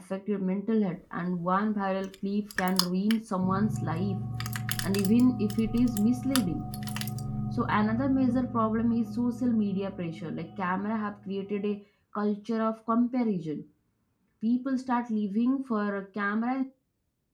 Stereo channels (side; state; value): both; identical; correlation 1.00